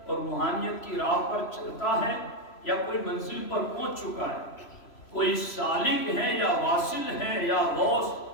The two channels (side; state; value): right; late; 3.0 ms